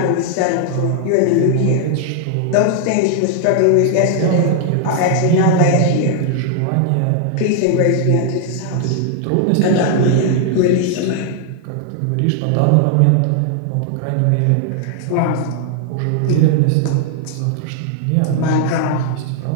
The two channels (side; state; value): both; different; correlation 0.00